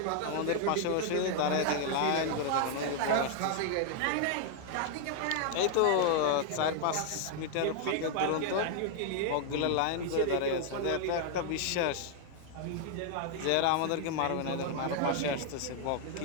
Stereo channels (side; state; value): both; different; correlation 0.00